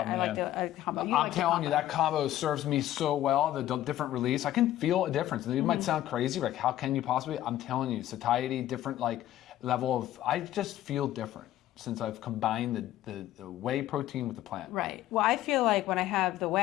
man. like the combo. I'm telling you, that combo serves me so well, the different release. I can feel a difference. And it might sound crazy, like how can you possibly? I'm telling you, satiety, different like level of, I just feel different since I've combined the whey protein with the plant. Right. Well, I feel like when I have the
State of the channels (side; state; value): right; quieter; 13.5 dB